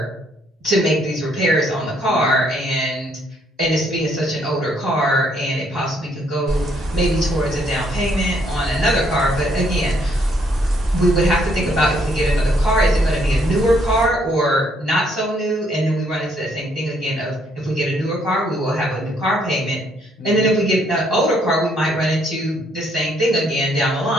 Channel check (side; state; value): both; normal; correlation 0.69